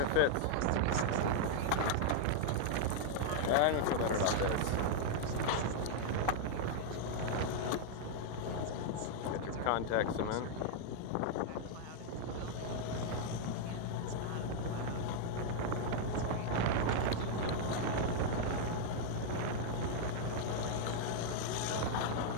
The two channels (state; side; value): different; both; correlation -0.01